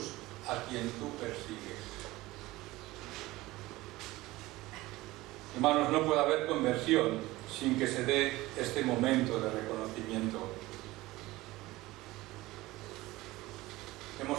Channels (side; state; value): left; quieter; 18.9 dB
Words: a quien tú persigues. Hermanos, no puede haber conversión sin que se dé este momento de reconocimiento.